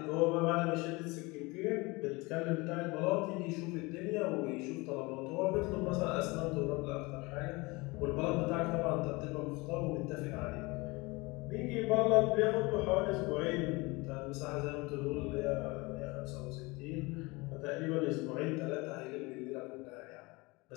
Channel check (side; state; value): right; quieter; 24.6 dB